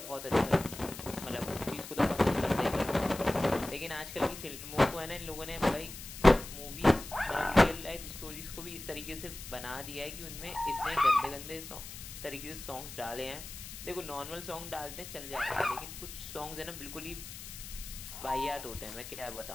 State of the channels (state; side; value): noise; left; hiss, 12 dB below the sound